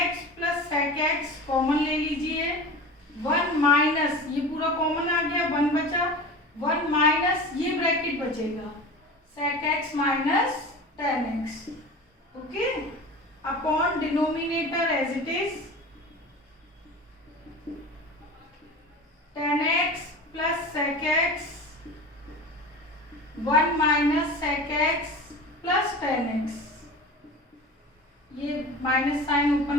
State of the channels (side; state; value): both; normal; correlation 0.34